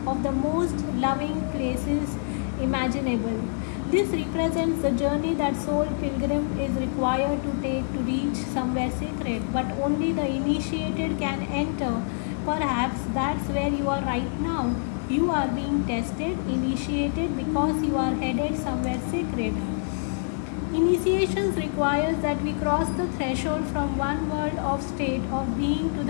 of the most loving places imaginable. This represents the journey that soul pilgrim is required to take to reach somewhere sacred, but only the initiated can enter. Perhaps that's where you are right now. You are being tested, initiated, because you are headed somewhere sacred. Initiations requires that we cross the threshold from one world of state of being to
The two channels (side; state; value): right; silent; digital silence